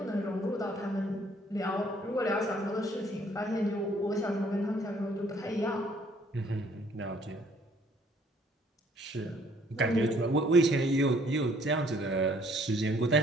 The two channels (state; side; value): normal; both; correlation 0.62